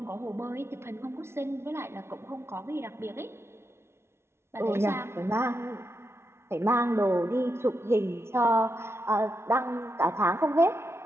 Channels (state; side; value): late; left; 0.12 ms